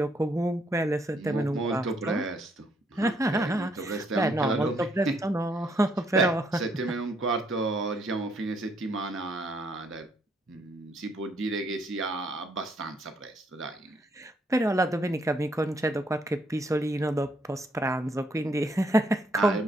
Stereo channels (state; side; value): normal; both; correlation 0.71